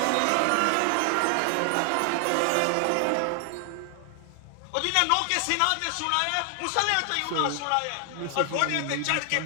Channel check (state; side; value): different; both; correlation 0.00